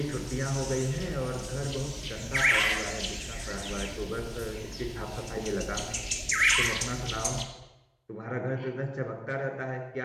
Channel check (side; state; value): both; identical; correlation 1.00